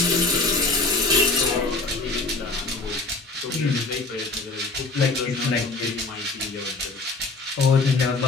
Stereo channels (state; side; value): quieter; right; 3.5 dB